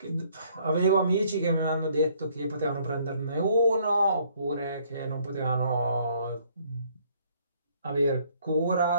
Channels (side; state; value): both; inverted; correlation -0.63